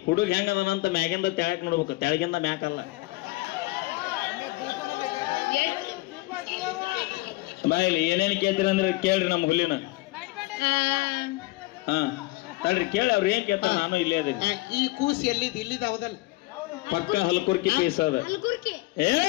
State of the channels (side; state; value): right; quieter; 20.4 dB